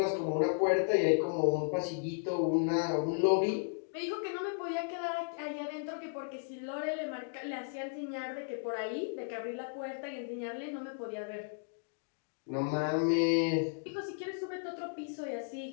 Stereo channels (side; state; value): right; silent; digital silence